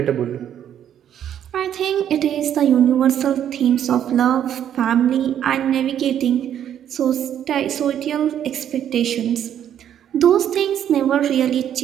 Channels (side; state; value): left; quieter; 10.0 dB